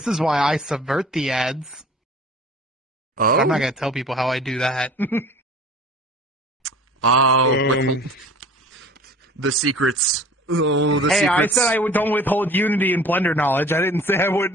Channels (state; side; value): normal; both; correlation 0.45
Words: is why I subvert the ads. Oh. But I'm not gonna tell people how I do that. The secrets. Oh, the Hey, secrets. I said I don't withhold Unity and Blender knowledge. I didn't say I